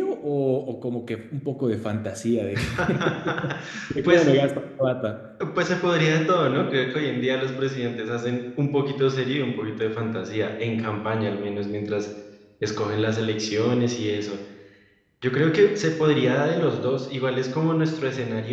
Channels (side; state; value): both; identical; correlation 1.00